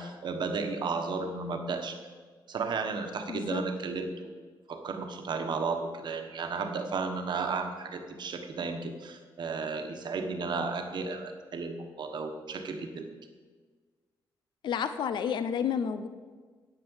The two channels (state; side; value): normal; both; correlation 0.46